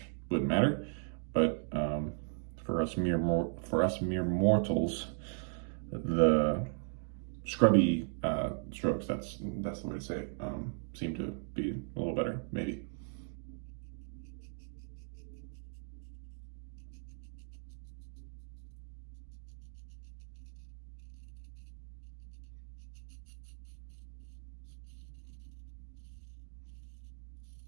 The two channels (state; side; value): silent; left; 53 dB below the other